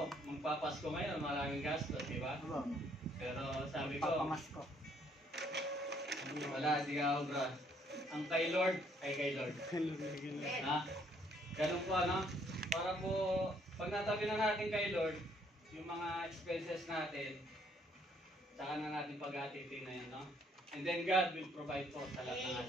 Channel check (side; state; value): both; normal; correlation 0.67